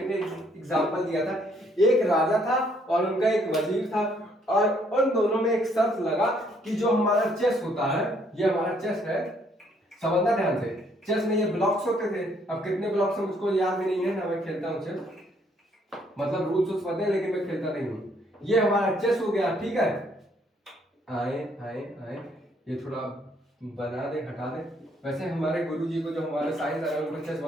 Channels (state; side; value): normal; both; correlation 0.67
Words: ने एग्जांपल दिया था। एक राजा था और उनका एक वजीर था, और उन दोनों में एक शर्त लगा कि जो हमारा चेस होता है, ये हमारा चेस है, समझना ध्यान से, चेस में ये ब्लॉक्स होते थे, अब कितने ब्लॉक्स हैं मुझको याद भी नहीं है ना, मैं खेलता हूँ चेस, मतलब रूल्स उस पता है लेकिन मैं खेलता नहीं हूँ। ये हमारा चेस हो गया, ठीक है, आए आए आए, ये थोड़ा बना दे, हटा दे। वैसे हमारे गुरुजी को जो हमारे साइंस है उनको चेस